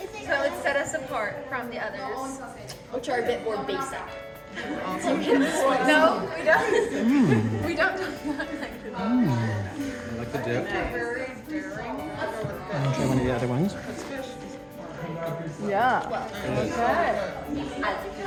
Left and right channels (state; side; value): identical; both; correlation 1.00